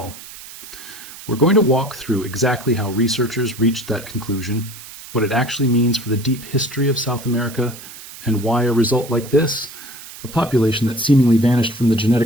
We're going to walk through exactly how researchers reached that conclusion, what it actually means for the deep history of South America, and why a result like this, a population that seemingly vanished from the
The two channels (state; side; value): noise; right; hiss, 15 dB below the sound